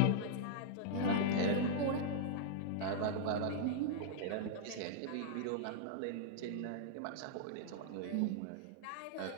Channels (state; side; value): different; both; correlation -0.02